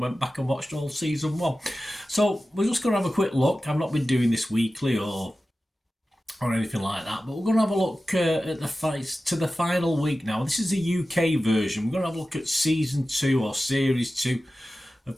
back and watched all season 1. So we're just going to have a quick look. I've not been doing this weekly or anything like that, but we're going to have a look at the fights to the final week now. This is the UK version. We're going to have a look at season 2 or series 2 of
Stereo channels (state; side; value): normal; both; correlation 0.95